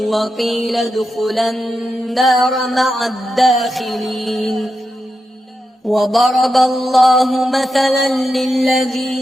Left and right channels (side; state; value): both; normal; correlation 0.88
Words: ادخلا النار مع الداخلين. وضرب الله مثلا